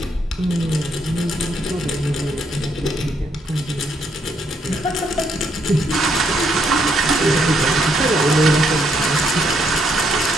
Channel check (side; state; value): both; normal; correlation 0.74